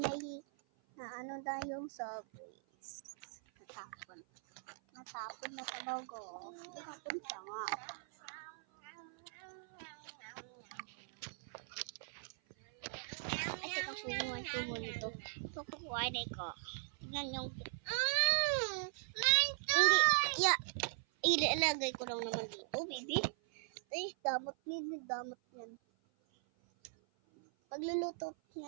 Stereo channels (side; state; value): left; silent; 51 dB below the other